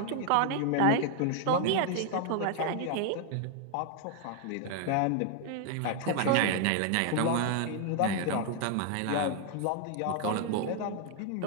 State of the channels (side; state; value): both; different; correlation 0.00